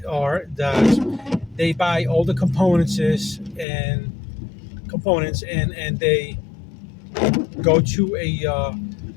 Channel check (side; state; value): right; drops out; at 3.7 s